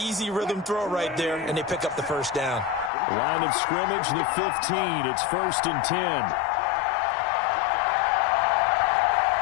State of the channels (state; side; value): drops out; right; at 2.9 s